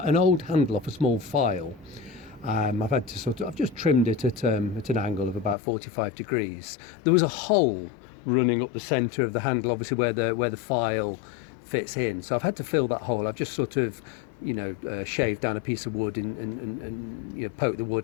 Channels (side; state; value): right; drops out; at 5.6 s